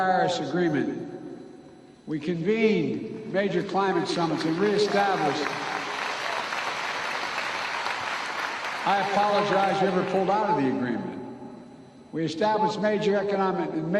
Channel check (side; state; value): both; identical; correlation 1.00